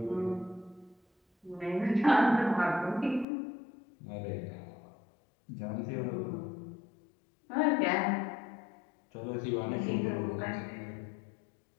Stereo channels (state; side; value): drops out; right; at 3.2 s